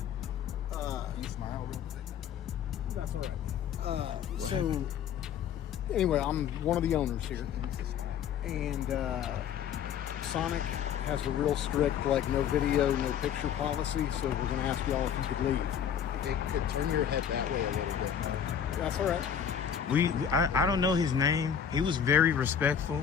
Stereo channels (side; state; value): right; quieter; 8.4 dB